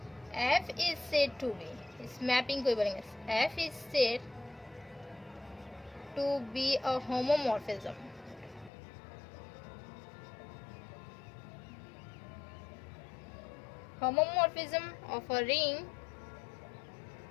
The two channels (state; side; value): drops out; right; at 8.7 s